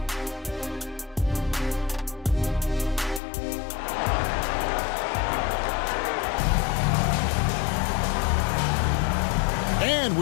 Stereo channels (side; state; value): right; drops out; at 3.2 s